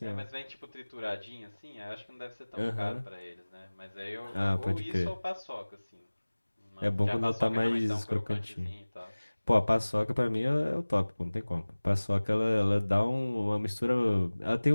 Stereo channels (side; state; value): both; inverted; correlation -1.00